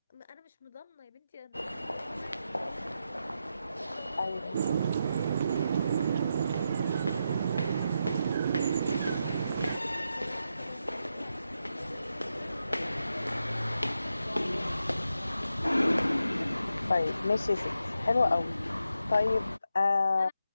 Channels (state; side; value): inverted; both; correlation -0.86